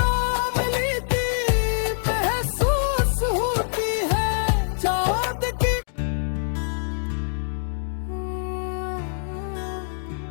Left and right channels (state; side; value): silent; right; digital silence